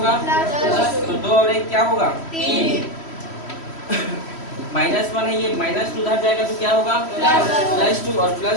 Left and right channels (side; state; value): right; late; 3.1 ms